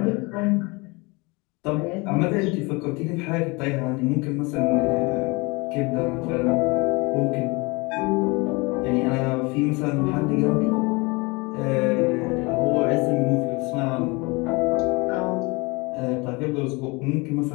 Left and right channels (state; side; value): quieter; right; 26.5 dB